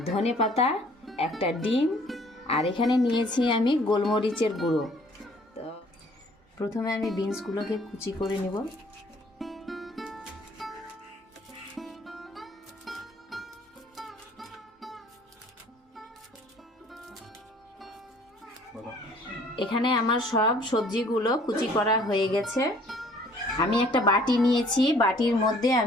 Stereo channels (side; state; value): both; normal; correlation 0.57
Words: ধনেপাতা, একটা ডিম, আর এখানে নিয়েছি আমি গোলমরিচের গুঁড়ো। তো প্রথমে আমি বিনসগুলোকে কুচি করে নেব। এখানে আমার সব সবজিগুলো কুচি করা হয়ে গেছে। আমি একটা বাটি নিয়েছি, বাটির মধ্যে